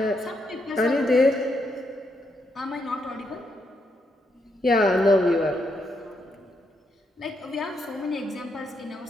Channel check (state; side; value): normal; both; correlation 0.79